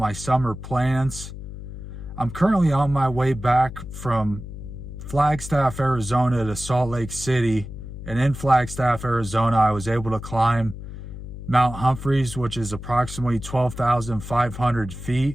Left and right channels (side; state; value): left; noise; hum, 11 dB below the sound